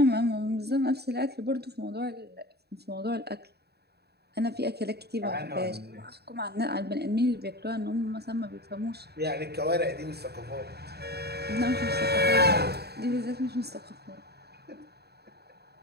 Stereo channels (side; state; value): left; late; 0.47 ms